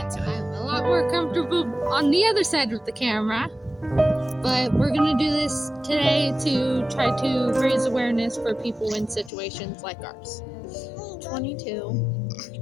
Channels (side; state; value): right; drops out; at 9.3 s